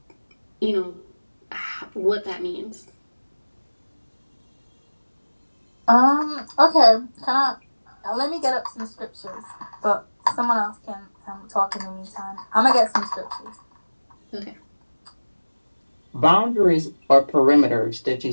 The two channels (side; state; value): both; inverted; correlation -1.00